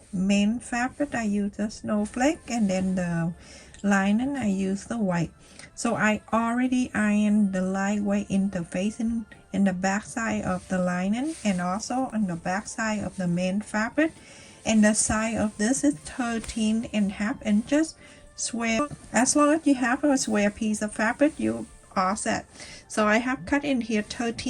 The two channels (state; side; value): identical; both; correlation 1.00